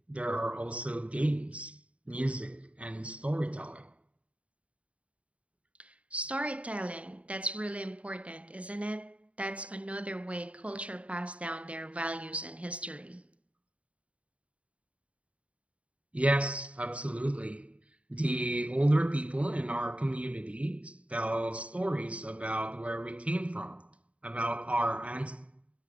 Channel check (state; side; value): late; left; 0.065 ms